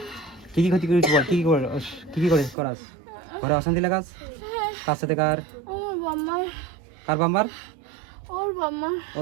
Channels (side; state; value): left; drops out; at 2.6 s